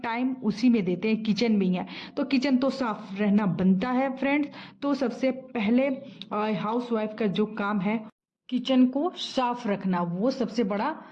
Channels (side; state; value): both; identical; correlation 1.00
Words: उसी में देते हैं, किचन में ही है। तो किचन तो साफ रहना बनता है फ्रेंड्स। तो सबसे पहले हाउस वाइफ का जो काम है किचन को साफ रखना, वो सबसे बड़ा